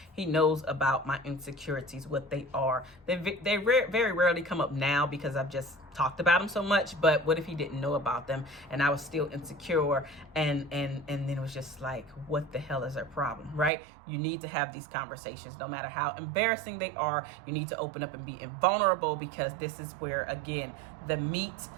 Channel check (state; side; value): drops out; left; at 13.7 s